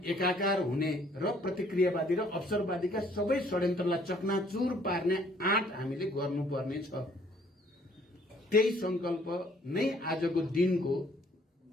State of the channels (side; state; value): both; normal; correlation 0.61